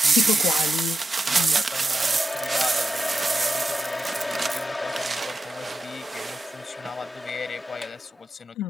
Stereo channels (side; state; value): both; normal; correlation 0.89